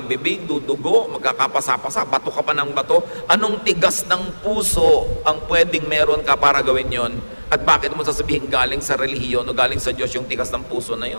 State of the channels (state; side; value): inverted; both; correlation -1.00